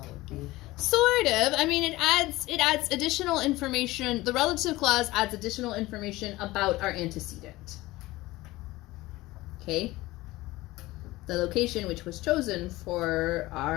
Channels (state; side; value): quieter; right; 18.9 dB